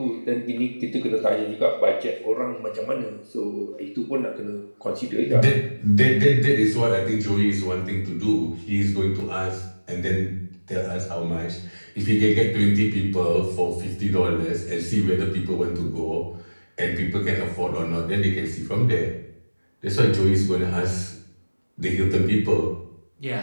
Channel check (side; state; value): both; inverted; correlation -1.00